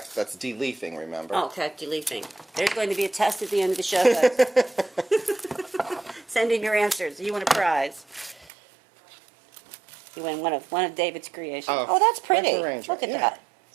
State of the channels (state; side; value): drops out; left; at 8.5 s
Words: deleafing, remember? Oh, okay. Deleting. There's going to be a test at the end of the show, guys. Send in your answers. You win a prize. You win one of David's creations. Oh, that's pretty. arrangement, Look at yeah. that.